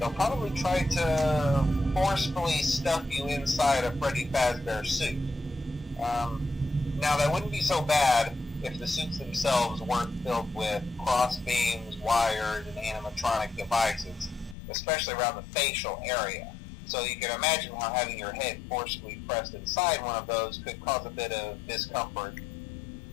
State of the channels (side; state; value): right; drops out; at 14.6 s